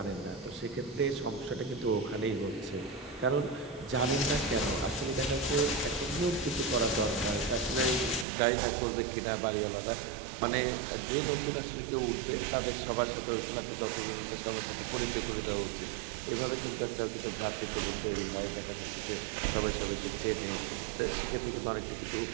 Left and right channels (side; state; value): left; drops out; at 8.2 s